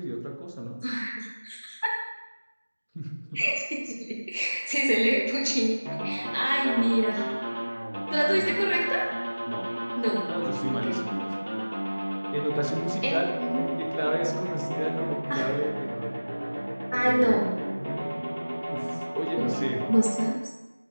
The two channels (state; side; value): inverted; both; correlation -1.00